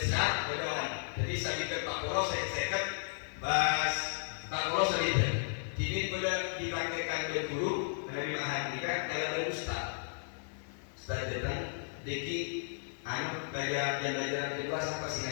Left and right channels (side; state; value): right; silent; digital silence